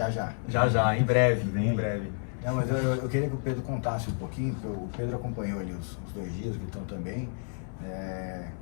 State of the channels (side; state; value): right; silent; 58 dB below the other